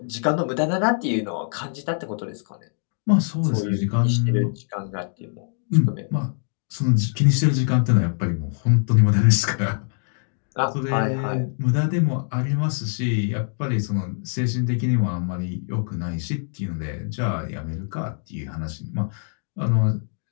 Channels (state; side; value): silent; right; 63 dB below the other